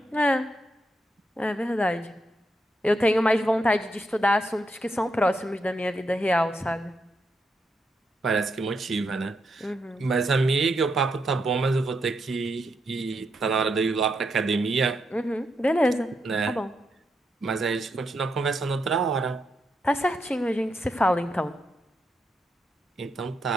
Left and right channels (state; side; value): normal; both; correlation 0.81